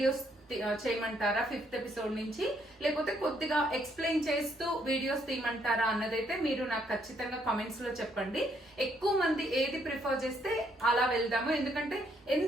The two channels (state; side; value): normal; both; correlation 0.71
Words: చేయమంటారా 5th ఎపిసోడ్ నుంచి, లేకపోతే కొద్దిగా ఎక్స్ప్లెయిన్ చేస్తూ వీడియోస్ తీయమంటారా అన్నదైతే మీరు నాకు ఖచ్చితంగా కామెంట్స్ లో చెప్పండి. ఎక్కువ మంది ఏది ప్రిఫర్ చేస్తే అలా వెళ్దాము. ఎందుకంటే